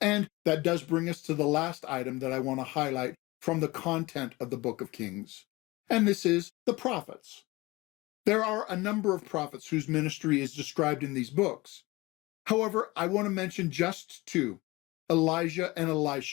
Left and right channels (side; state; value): right; quieter; 21.7 dB